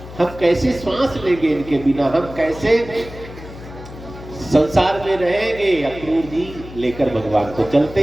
हम कैसे श्वास लेंगे इनके बिना, हम कैसे संसार में रहेंगे? अक्रूर जी लेकर भगवान को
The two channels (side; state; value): left; noise; hum, 14 dB below the sound